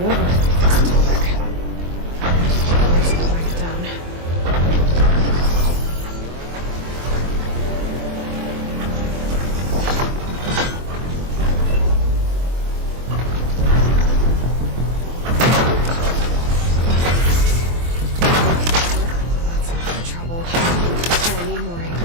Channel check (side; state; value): left; late; 23 ms